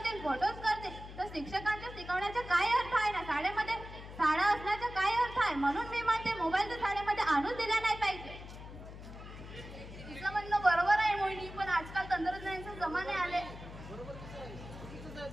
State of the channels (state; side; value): noise; left; hum, 13 dB below the sound